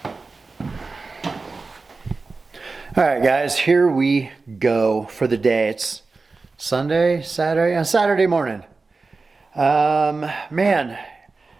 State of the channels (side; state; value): left; quieter; 3.9 dB